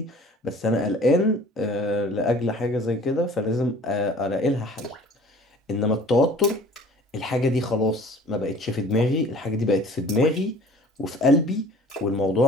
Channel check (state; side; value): normal; both; correlation 0.48